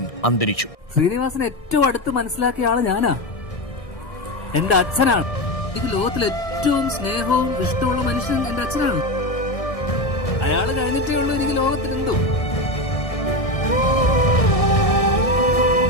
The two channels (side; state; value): right; late; 1.6 ms